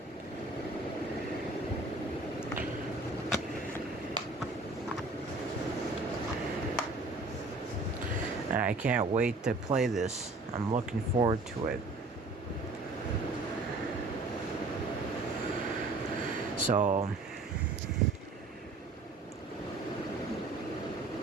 and I can't wait to play this. I'm looking forward to it. So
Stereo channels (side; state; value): left; quieter; 3.2 dB